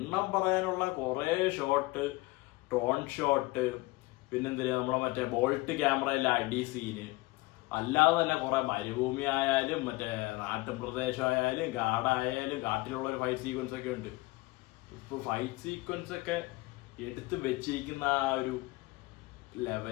പറയാനുള്ള കുറെ ഷോട്ട്, ടോൺ ഷോട്ട്, പിന്നെന്തിനാ നമ്മളെ മറ്റേ ബോൾട്ട് ക്യാമറയിലെ അടി സീന്, അല്ലാതെ തന്നെ കുറെ മരുഭൂമി ആയാലും മറ്റേ നാട്ടും പ്രദേശമായാലും കാടായാലും കാട്ടിലുള്ള ഒരു ഫൈറ്റ് സീക്വൻസ് ഒക്കെ ഉണ്ട്. ഇപ്പൊ ഫൈറ്റ് സീക്വൻസ് ഒക്കെ എടുത്ത് വെച്ചിരിക്കുന്ന ആ ഒരു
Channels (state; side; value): quieter; right; 21.8 dB